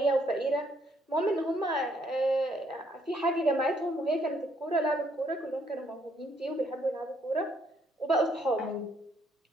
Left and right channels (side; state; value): both; normal; correlation 0.69